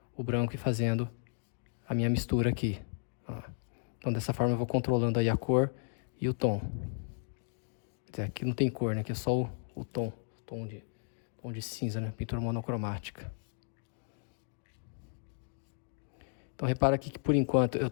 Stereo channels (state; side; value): silent; right; digital silence